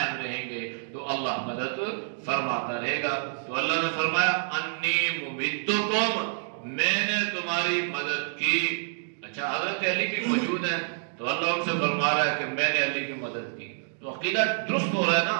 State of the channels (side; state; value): left; silent; digital silence